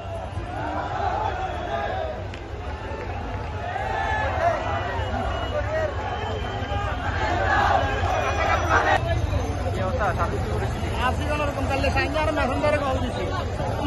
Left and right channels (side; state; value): both; identical; correlation 1.00